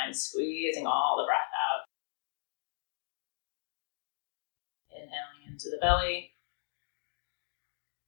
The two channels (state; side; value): silent; right; digital silence